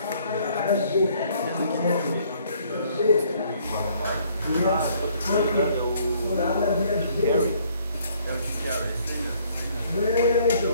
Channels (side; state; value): both; inverted; correlation -0.63